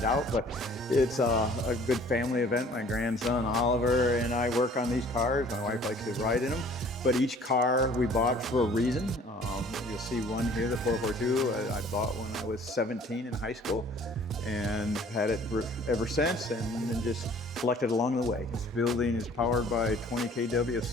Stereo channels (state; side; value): normal; both; correlation 0.53